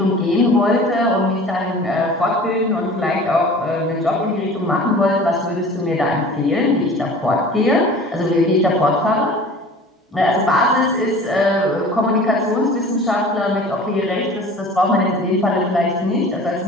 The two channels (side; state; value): both; normal; correlation 0.43